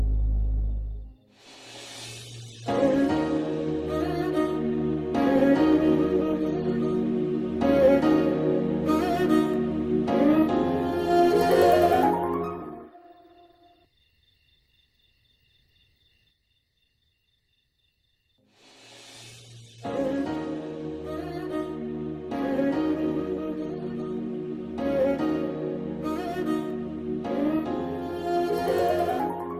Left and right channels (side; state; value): both; identical; correlation 1.00